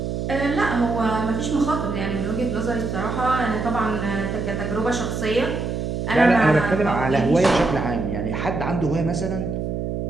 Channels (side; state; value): right; noise; hum, 3 dB below the sound